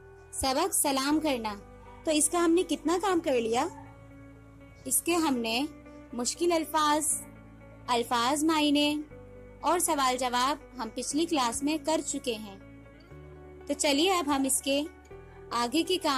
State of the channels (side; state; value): both; identical; correlation 1.00